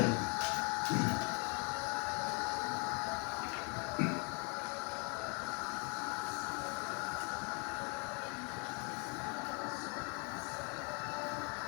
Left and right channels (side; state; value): right; quieter; 35.0 dB